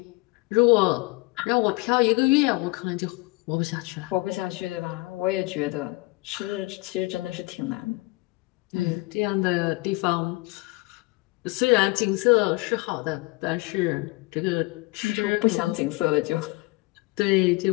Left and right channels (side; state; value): right; quieter; 23.5 dB